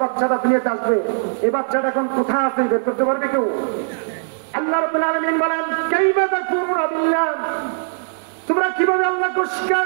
বাচ্চাটা দুনিয়াতে আসবে, এই বাচ্চাটা এখন কোথায় আছে বের করতে পারবে কেউ? আল্লাহ রাব্বুল আলামিন বলেন কাইফা তাকফুরুনা বিল্লাহ, তোমরা কিভাবে আল্লাহকে অস্বীকার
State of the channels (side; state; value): left; silent; digital silence